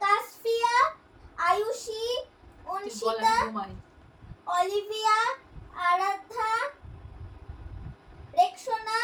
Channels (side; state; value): both; identical; correlation 1.00